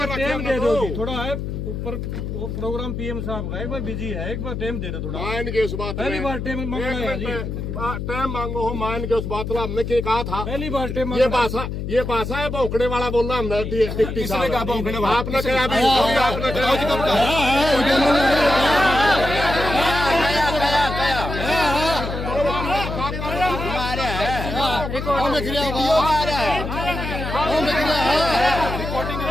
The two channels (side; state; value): left; noise; hum, 5 dB below the sound